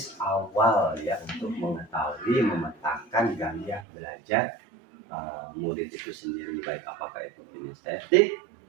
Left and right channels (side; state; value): left; drops out; at 3.9 s